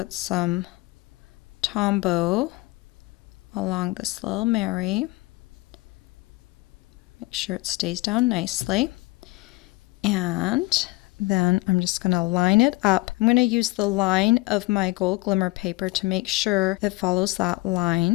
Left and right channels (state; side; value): quieter; right; 21.8 dB